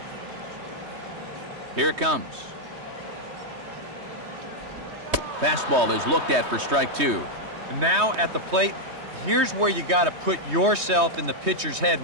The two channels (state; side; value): late; left; 3.2 ms